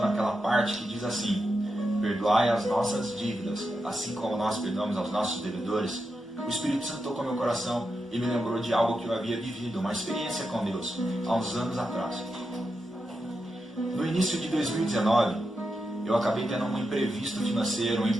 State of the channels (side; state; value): both; normal; correlation 0.87